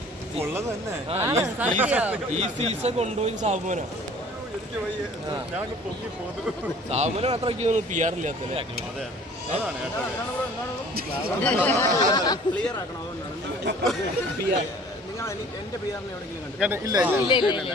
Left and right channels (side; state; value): both; normal; correlation 0.50